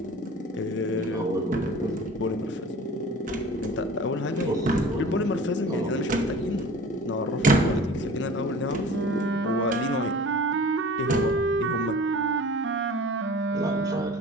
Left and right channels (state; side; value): normal; both; correlation 0.42